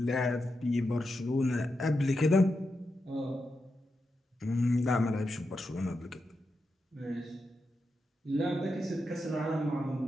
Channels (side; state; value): both; normal; correlation 0.87